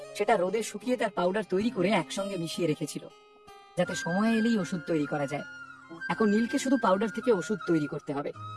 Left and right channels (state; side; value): identical; both; correlation 1.00